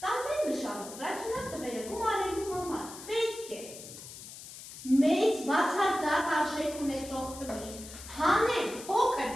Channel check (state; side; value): noise; left; hiss, 14 dB below the sound